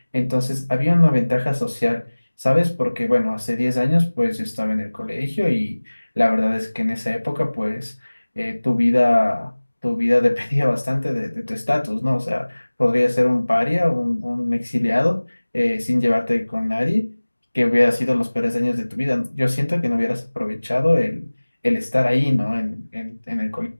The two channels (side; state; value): both; inverted; correlation -1.00